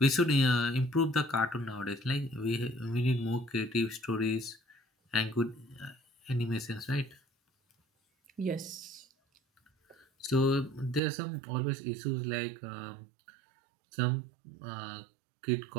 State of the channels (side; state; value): left; drops out; at 11.0 s